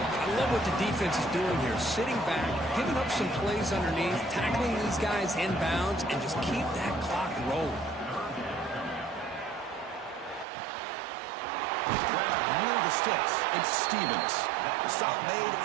love what the defense is doing here. Sitting back, giving up some plays underneath, tackling these guys inbounds, and just keep that clock rolling. Grab near the sticks. It's Stevens. The stop made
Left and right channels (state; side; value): drops out; left; at 10.5 s